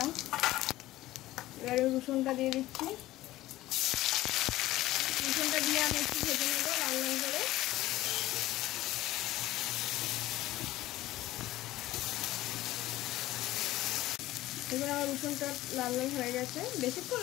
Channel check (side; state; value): right; quieter; 16.2 dB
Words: এবারে রসুনটা দিয়ে দিচ্ছি। রসুনটা দিয়ে আমি একটু ভেজে নেব লাল লাল করে। এবার আমার রসুনটা লাল লাল হয়ে গেছে, বেশিক্ষণ